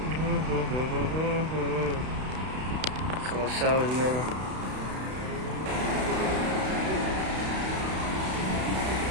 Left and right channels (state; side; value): late; left; 32 ms